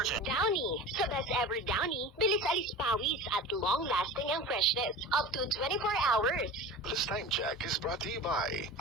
Downy. Sa best ever Downy, bilis alis pawis at long-lasting ang freshness. Up to 24 hours. This time check is brought to you by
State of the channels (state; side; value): normal; both; correlation 0.35